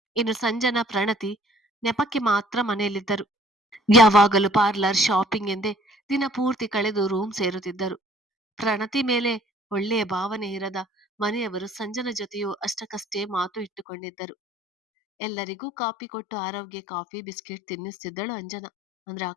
ಇನ್ನು ಸಂಜನಾ, ಪ್ರಣತಿ ನೆಪಕ್ಕೆ ಮಾತ್ರ ಮನೆಯಲ್ಲಿದ್ದರು. ಯಾವಾಗಲೂ ಪಾರ್ಲರ್, ಶಾಪಿಂಗ್ ಎಂದೇ ದಿನ ಪೂರ್ತಿ ಕಳೆದು ರೂಮ್ ಸೇರುತ್ತಿದ್ದರು. ಪ್ರಣತಿ ಮೇಲೆ ಒಳ್ಳೆಯ ಭಾವನೆ ಇರದ ಮನೆಯವರು ಸಂಜನ ಜೊತೆಯೂ ಅಷ್ಟಕ್ಕಷ್ಟೇ ಮಾತು ಇಟ್ಟುಕೊಂಡಿದ್ದರು. ಎಲ್ಲರಿಗೂ ಕಾಫಿ ಕೊಟ್ಟು ಆರೋಗ್ಯ ಕಾಫಿ ಬಿಸ್ಕೆಟ್ ತಿನ್ನಿಸ್ತಿದ್ದಳು ಅಂಜನಾ, ಅಂದ್ರೆ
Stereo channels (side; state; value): right; drops out; at 13.9 s